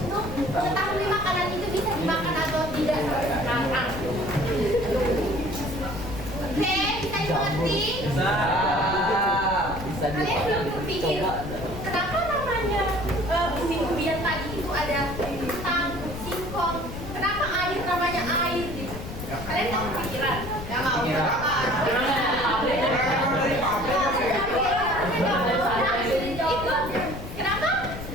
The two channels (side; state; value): left; noise; rumble, 9 dB below the sound